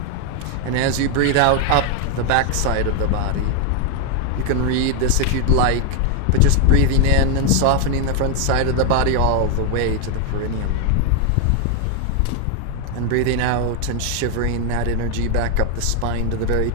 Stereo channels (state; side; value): different; both; correlation 0.01